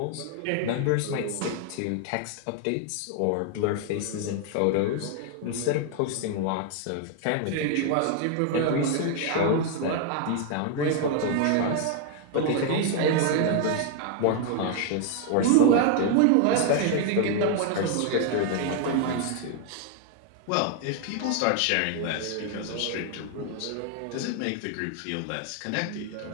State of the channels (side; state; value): both; different; correlation 0.00